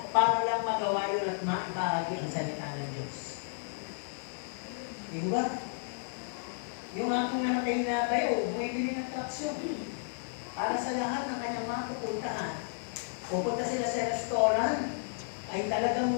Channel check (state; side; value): silent; right; 56 dB below the other